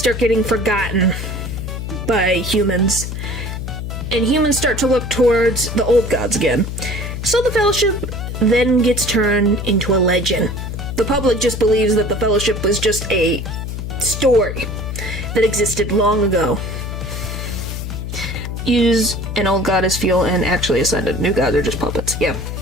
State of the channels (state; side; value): noise; left; hum, 6 dB below the sound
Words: getting forgotten by humans, and humans start to look towards the old gods again. So the Fellowship then gets turned into a legend. The public just believes that the Fellowship was just a story that existed long ago. Use an old god as fuel and actually ascended. New gods are just puppets. Yeah.